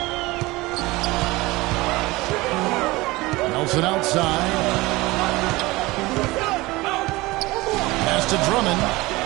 Nelson outside. Pass to Drummond.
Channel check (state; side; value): quieter; left; 21.0 dB